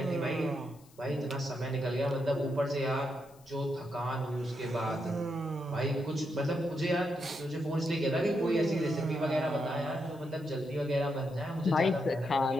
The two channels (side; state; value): left; noise; hiss, 28 dB below the sound